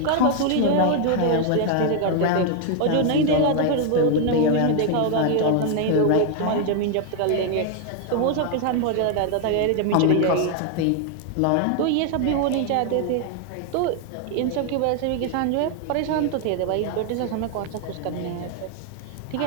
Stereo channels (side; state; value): both; different; correlation 0.00